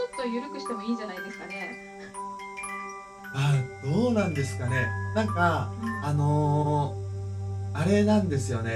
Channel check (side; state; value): both; identical; correlation 1.00